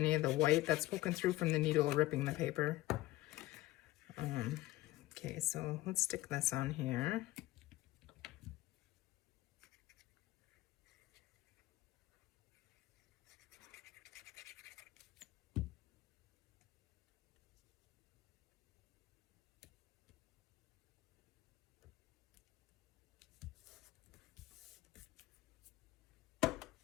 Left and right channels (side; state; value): right; quieter; 17.1 dB